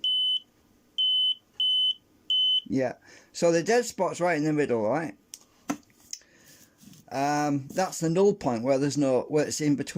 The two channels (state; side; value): identical; both; correlation 1.00